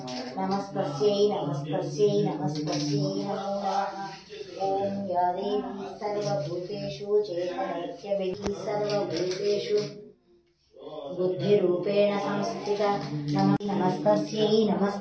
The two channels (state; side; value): identical; both; correlation 1.00